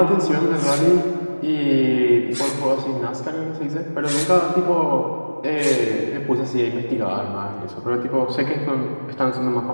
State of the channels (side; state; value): both; inverted; correlation -1.00